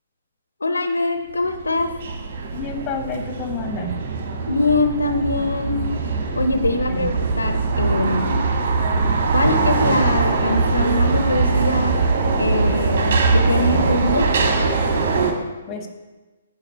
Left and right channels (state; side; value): inverted; both; correlation -0.67